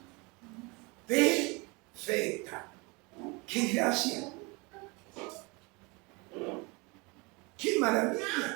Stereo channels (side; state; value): left; quieter; 27.7 dB